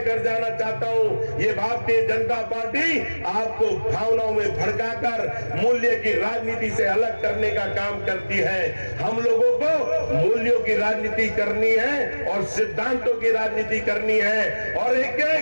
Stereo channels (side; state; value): both; inverted; correlation -1.00